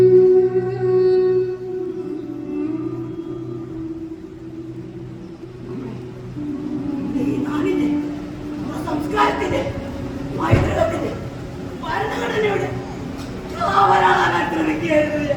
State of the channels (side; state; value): both; identical; correlation 1.00